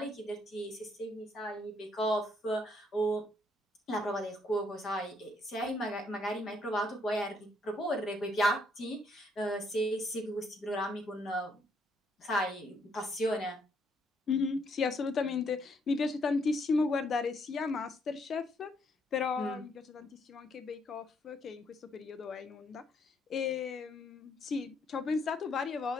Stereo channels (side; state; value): both; normal; correlation 0.71